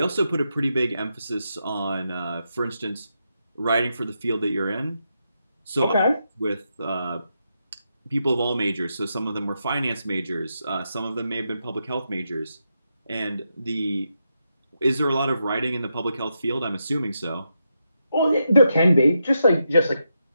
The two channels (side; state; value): both; inverted; correlation -0.84